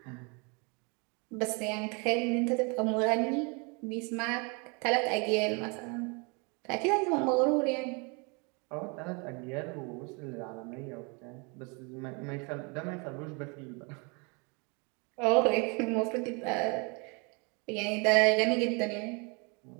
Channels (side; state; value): left; quieter; 31.7 dB